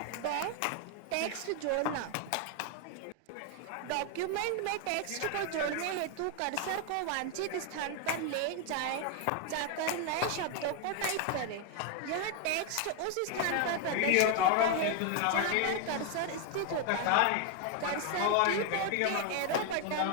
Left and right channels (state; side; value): different; both; correlation 0.00